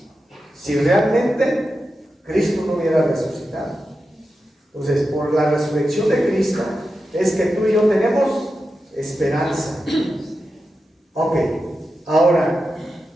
si realmente Cristo no hubiera resucitado. Entonces, por la resurrección de Cristo es que tú y yo tenemos esperanza. Ok, ahora,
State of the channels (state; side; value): normal; both; correlation 0.90